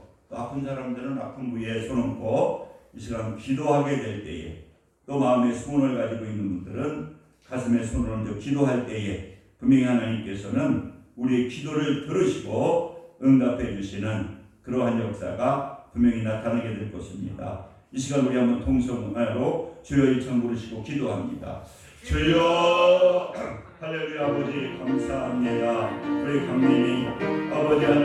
또 아픈 사람들은 아픈 부위에 손 얹고 이 시간 기도하게 될 때에 또 마음에 소원을 가지고 있는 분들은 가슴에 손을 얹어 기도할 때에 분명히 하나님께서는 우리의 기도를 들으시고 응답해 주시는 그러한 역사가 분명히 나타나게 될 것입니다. 이 시간 우리 한번 통성으로 주여 일청 부르시고 기도합니다. 주여 할렐루야. 아버지 감사합니다. 우리 강민이 아버지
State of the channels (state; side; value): identical; both; correlation 1.00